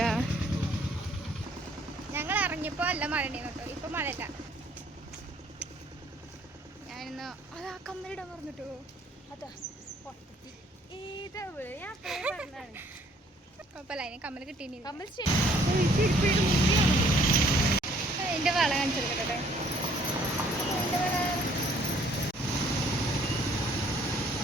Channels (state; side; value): normal; both; correlation 0.61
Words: ഞങ്ങൾ ഇറങ്ങിയപ്പോൾ അല്ല മഴ കേട്ടോ. ഇപ്പൊ മഴയില്ല. ഞാനിന്ന് അതാ കമ്മലിടാൻ പറഞ്ഞിട്ടോ. അതാ കുഴപ്പമില്ല, അതിന് കമ്മൽ കിട്ടീനി. കമ്മൽ അതിന്റെ വള കാണിച്ചെടുക്കട്ടെ.